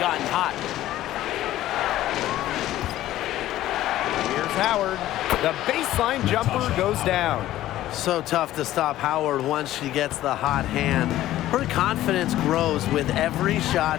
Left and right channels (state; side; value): quieter; right; 14.2 dB